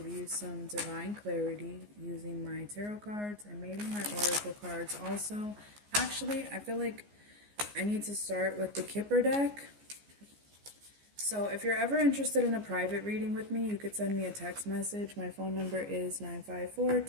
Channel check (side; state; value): left; late; 14 ms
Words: you some divine clarity using my tarot cards and maybe my oracle cards also. Actually, I feel like I need to start with the Kipper deck. So if you're ever interested in a private reading with me, you could send me a text message. My phone number is